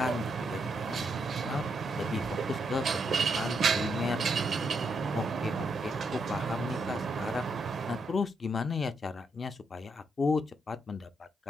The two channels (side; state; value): both; normal; correlation 0.79